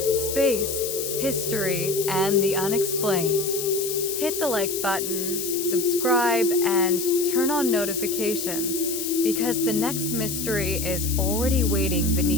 space, history, and the unexplained. Hit the like button, subscribe, and turn on notifications, because the next mystery is already waiting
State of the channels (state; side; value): noise; left; hiss, 5 dB below the sound